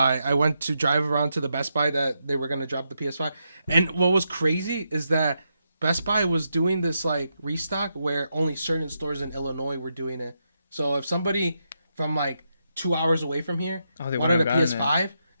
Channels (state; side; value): inverted; both; correlation -0.83